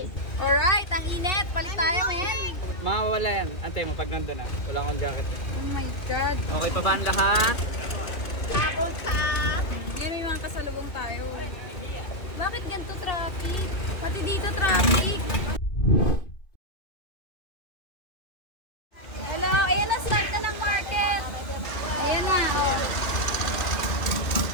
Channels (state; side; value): late; right; 2.4 ms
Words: Alright, ang init. Palit tayo, men. Mawawala yan. Antay mo pag nandun na. Wala akong jacket. Oh my God. Okay pa ba ang lahat? Hindi, may mga kasalubong tayo. Bakit ganito traffic? Pati dito traffic. Hello, ayan na, start na ng market. Ayan na, oh.